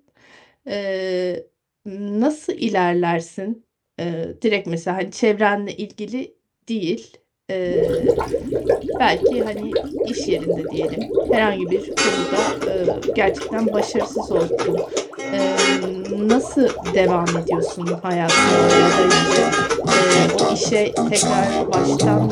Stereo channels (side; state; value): both; identical; correlation 1.00